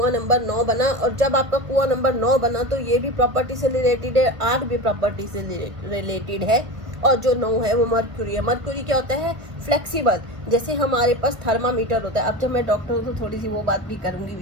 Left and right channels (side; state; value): left; late; 1.7 ms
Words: नंबर 9 बना, और जब आपका कुआं नंबर 9 बना तो ये भी प्रॉपर्टी से रिलेटेड है, 8 भी प्रॉपर्टी से रिलेटेड है, और जो 9 है वो मर्क्यूरी है। मर्क्यूरी क्या होता है, फ्लेक्सिबल, जैसे हमारे पास थर्मामीटर होता है। अब जब मैं डॉक्टर हूँ तो थोड़ी सी वो बात भी करूँगी